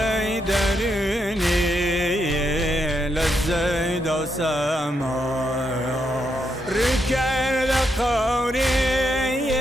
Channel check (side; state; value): both; normal; correlation 0.81